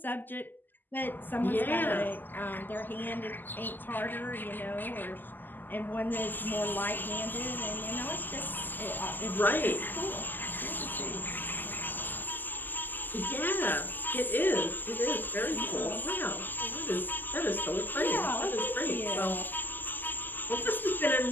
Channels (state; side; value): late; right; 0.089 ms